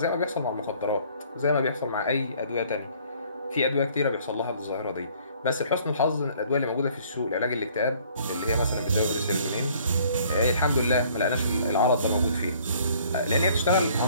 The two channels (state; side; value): inverted; both; correlation -0.58